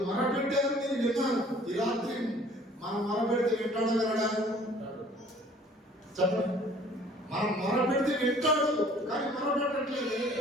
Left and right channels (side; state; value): both; normal; correlation 0.54